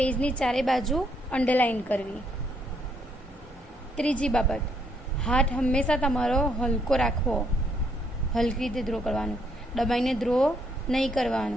ચારે બાજુ અંડરલાઇન કરવી. ત્રીજી બાબત, હાથ હંમેશા તમારો હલકો રાખવો, હલકી રીતે ડ્રો કરવાનું, દબાઈને ડ્રો નહીં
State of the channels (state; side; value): normal; both; correlation 0.72